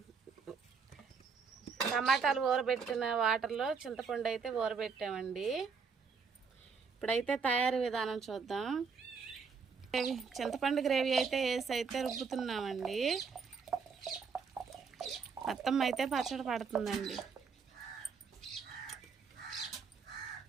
టమాటాలు ఊరబెట్టిన వాటర్లో చింతపండు అయితే ఊరబెట్టామండి. ఇప్పుడైతే తయారీ విధానం చూద్దాం. చింతపండు గ్రేవీ అయితే వేసి అయితే రుబ్బుతున్నామండి. మొత్తం అయితే పచ్చడి పడుతుందండి.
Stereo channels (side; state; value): left; quieter; 5.6 dB